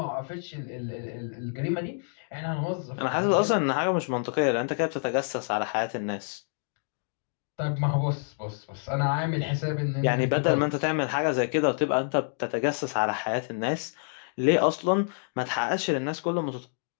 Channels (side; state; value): right; silent; digital silence